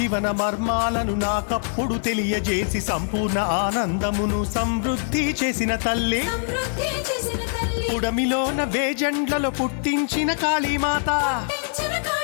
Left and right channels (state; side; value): silent; right; 63 dB below the other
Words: మర్మాలను నాకప్పుడు తెలియజేసి సంపూర్ణ ఆనందమును సమృద్ధి చేసిన తల్లి పుడమిలోన వేజెండ్లలో పుట్టించిన కాళీమాత